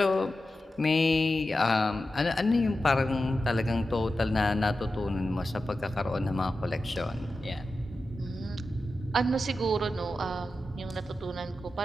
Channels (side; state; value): both; normal; correlation 0.92